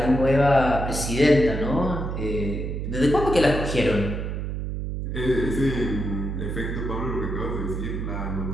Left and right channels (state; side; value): noise; right; hum, 4 dB below the sound